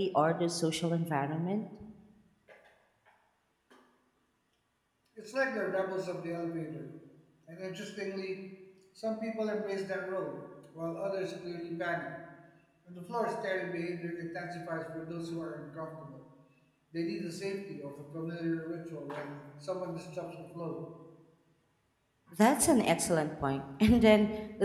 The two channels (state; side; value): identical; both; correlation 1.00